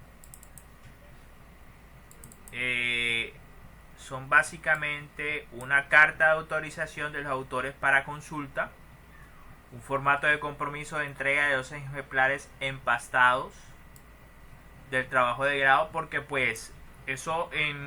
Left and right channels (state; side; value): identical; both; correlation 1.00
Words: Eh, Son básicamente una carta de autorización de los autores para consulta, un formato de compromiso de entrega de 12 ejemplares empastados del trabajo de grado, porque pues eso